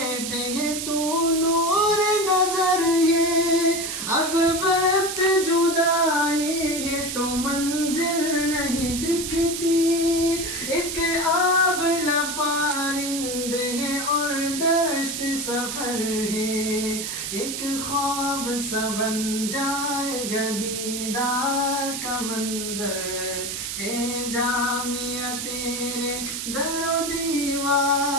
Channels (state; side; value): noise; right; hiss, 4 dB below the sound